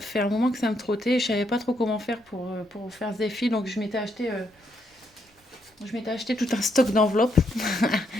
un moment que ça me trottait et je savais pas trop comment faire pour faire ce défi. Donc je m'étais acheté tout un stock d'enveloppes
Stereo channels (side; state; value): both; normal; correlation 0.75